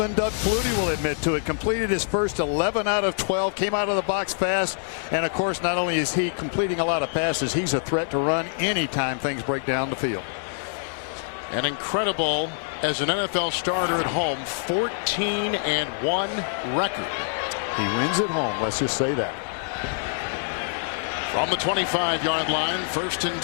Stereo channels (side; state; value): right; silent; digital silence